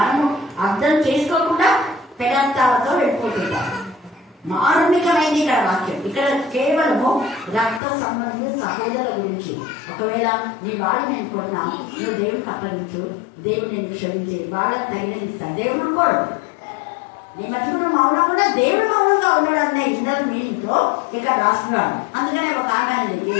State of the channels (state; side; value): drops out; right; at 7.8 s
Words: అర్థం చేసుకోకుండా పెడార్థాలతో వెళ్ళిపోతుంటాం. మారుణికమైంది ఇక్కడ వాక్యం. ఇక్కడ కేవలము రక్త సంబంధిత సహోదరుల గురించి. ఒకవేళ నీ వాడిని నేను కొన్నా, నువ్వు దేవుడికి అప్పగించు, దేవుడు నేను క్షమించి వాళ్ళకి తగినది ఇస్తాను. దేవుడు కోడు నీ మధ్యలో మౌనం కూడా దేవుడు మౌనంగా ఉన్నాడు అనే ఇన్నర్ మీనింగ్తో ఇక్కడ రాస్తున్నాడు. అందుకనే ఒక ఆమె